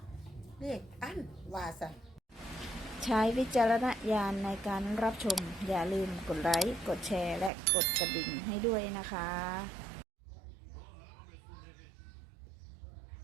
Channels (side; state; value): left; drops out; at 7.5 s